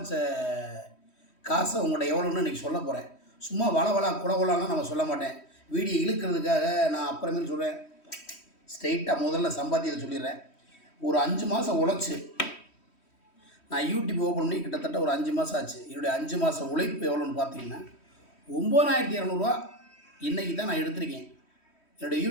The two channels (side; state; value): right; late; 3.1 ms